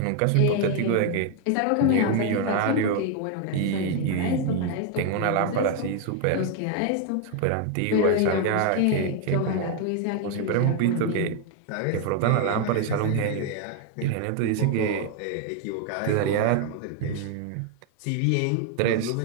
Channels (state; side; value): different; both; correlation 0.01